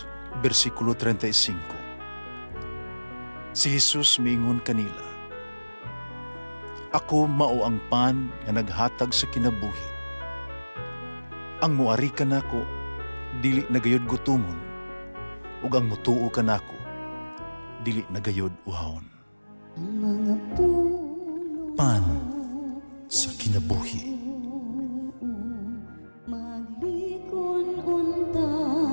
versikulo 35. Si Jesus miingon kanila, "Ako mao ang pan nga naghatag sa kinabuhi. Ang muari kanako dili nagayod gutomon, ug ang mutuo kanako dili nagayod uhawon." Pan sa kinabuhi.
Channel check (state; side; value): inverted; both; correlation -1.00